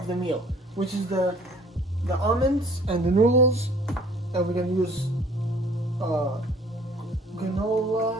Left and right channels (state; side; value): normal; both; correlation 0.54